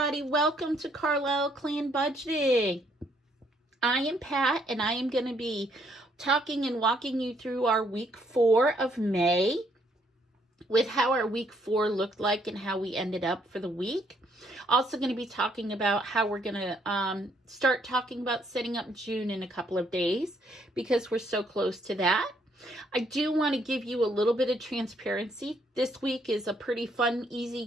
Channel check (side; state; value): both; normal; correlation 0.70